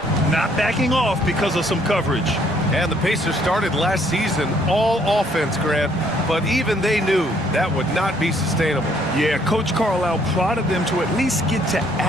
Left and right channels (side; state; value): both; normal; correlation 0.65